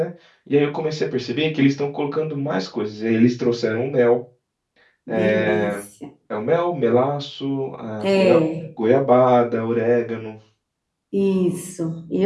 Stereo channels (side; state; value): both; identical; correlation 1.00